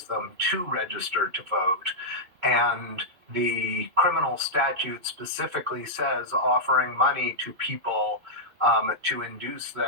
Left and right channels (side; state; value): left; late; 2.6 ms